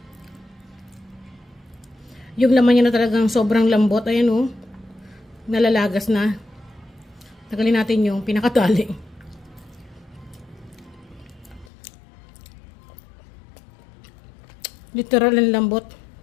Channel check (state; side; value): drops out; right; at 11.7 s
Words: Yung laman niya na talagang sobrang lambot. Ayan o. Nalalagas na. Tagalin natin yung pinakatali. Literal ang lambot.